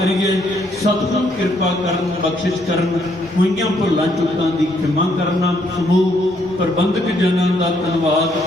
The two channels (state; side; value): normal; both; correlation 0.71